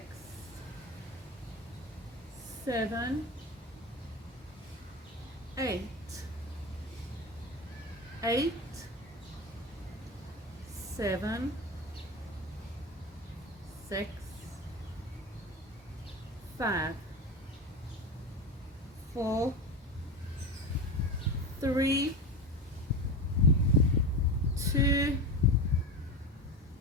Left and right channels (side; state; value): both; normal; correlation 0.24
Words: 7, 8, 8, 7, 6, 5, 4, 3, 2,